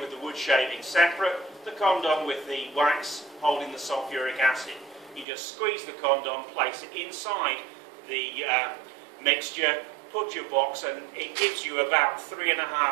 the wood shaving separate, the condom with the wax holding the sulfuric acid. You just squeeze the condom, place it inside the mixture, put your box, and it gives you about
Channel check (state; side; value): drops out; left; at 5.2 s